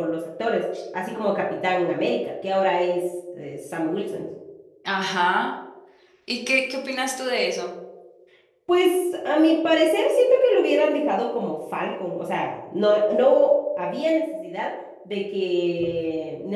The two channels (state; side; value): identical; both; correlation 1.00